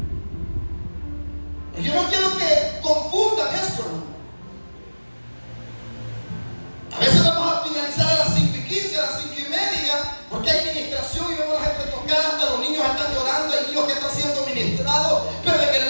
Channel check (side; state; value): both; inverted; correlation -1.00